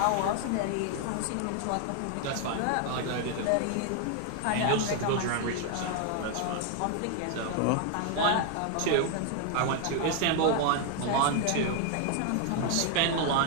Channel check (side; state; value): both; different; correlation 0.00